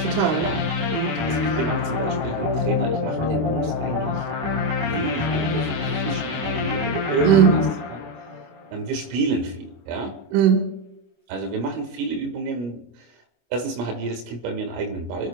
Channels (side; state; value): left; late; 25 ms